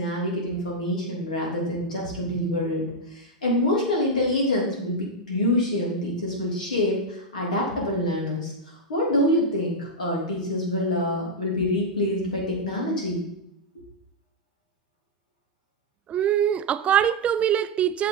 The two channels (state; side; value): normal; both; correlation -0.01